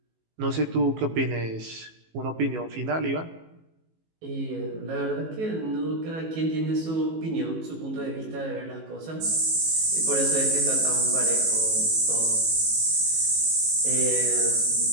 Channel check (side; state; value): left; late; 18 ms